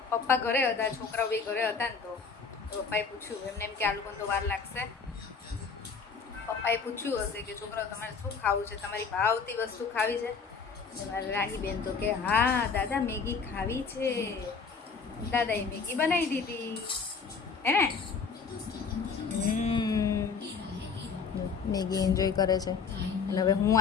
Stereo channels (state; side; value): quieter; right; 5.4 dB